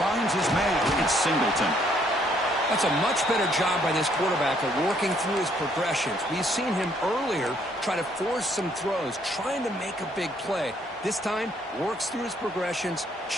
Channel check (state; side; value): normal; both; correlation 0.67